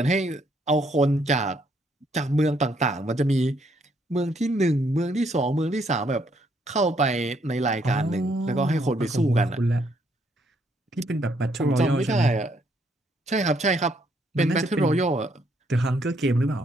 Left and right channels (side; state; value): both; normal; correlation 0.71